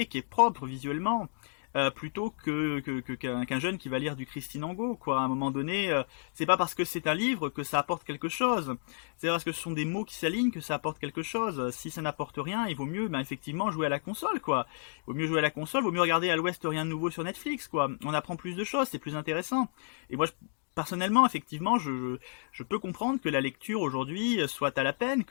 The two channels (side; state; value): right; silent; digital silence